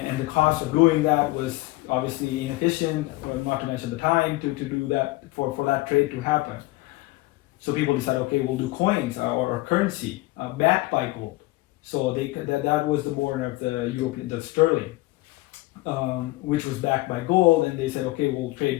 the cost of doing that was obviously inefficient, not to mention the time to do that for that trade to happen. So people decided, okay, we'll do coins or currency backed by gold. So that was the born of the sterling, which was backed by gold, and they said, okay, we'll trade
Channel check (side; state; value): right; quieter; 20.0 dB